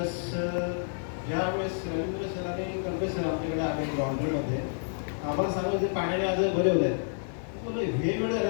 ज्यावेळेस रवींद्र सर आणि कर्वे सर आमच्याकडे आले लॉन्ड्रीमध्ये, आम्हाला सांगितलं ते पाण्याने आज बरे होत आहेत. बोललो हे वेळ झाले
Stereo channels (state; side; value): silent; right; digital silence